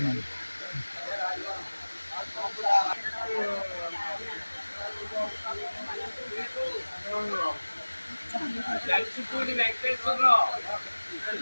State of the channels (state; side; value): inverted; both; correlation -1.00